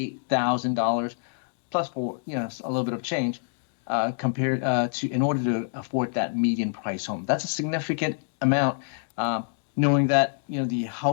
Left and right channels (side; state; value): right; silent; digital silence